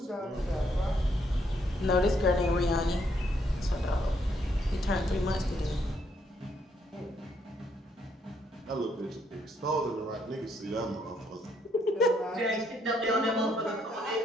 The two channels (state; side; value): normal; both; correlation 0.72